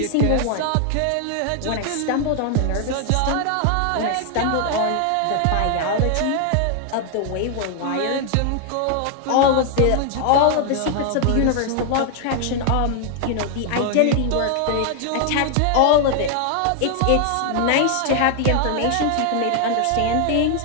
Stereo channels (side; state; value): both; different; correlation 0.00